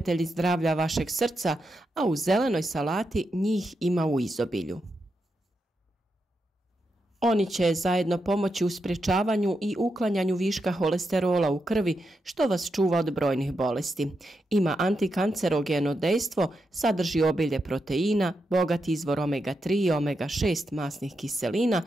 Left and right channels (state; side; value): normal; both; correlation 0.85